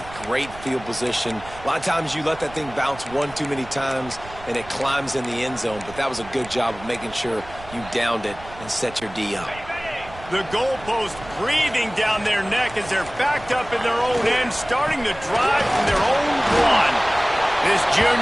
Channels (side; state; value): right; noise; rumble, 17 dB below the sound